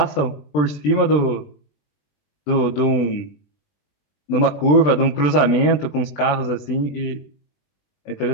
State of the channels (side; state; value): right; late; 20 ms